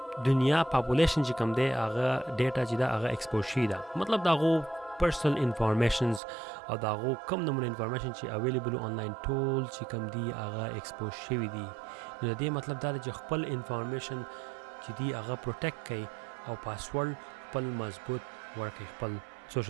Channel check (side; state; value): left; drops out; at 6.2 s